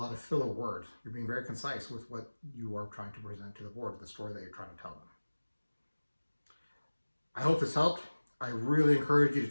of filler words. You're being very concise with what you are trying to present to the board, the story that you're trying to tell them. I hope this helped. I really encourage you to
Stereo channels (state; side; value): inverted; both; correlation -1.00